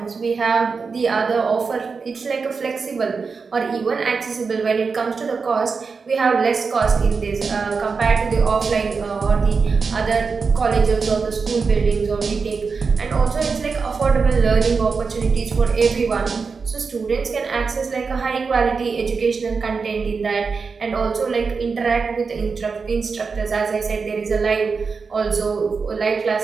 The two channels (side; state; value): left; quieter; 5.0 dB